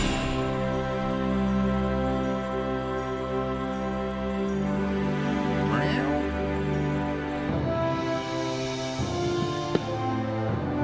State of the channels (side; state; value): both; identical; correlation 1.00